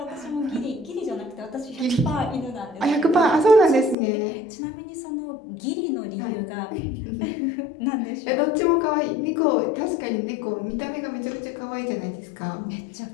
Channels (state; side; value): drops out; right; at 4.0 s